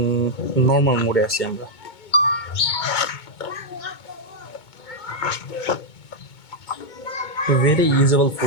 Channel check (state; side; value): late; right; 2.2 ms